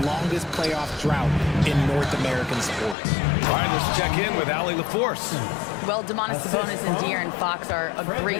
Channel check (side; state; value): right; drops out; at 3.0 s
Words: longest playoff drought in North American sports. All right, let's check in with Allie LaForce. Well, Domantas Sabonis and De'Aaron Fox are a great